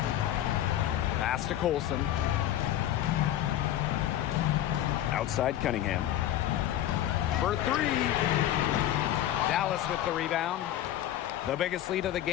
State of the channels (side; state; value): right; quieter; 12.4 dB